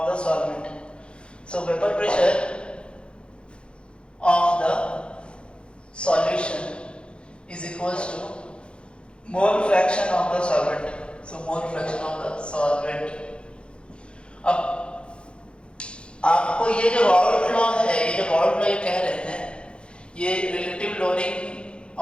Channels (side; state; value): right; late; 0.056 ms